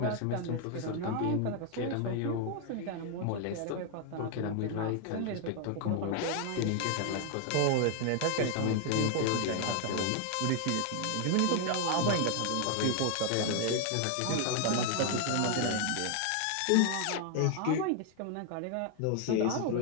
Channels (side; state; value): both; different; correlation 0.00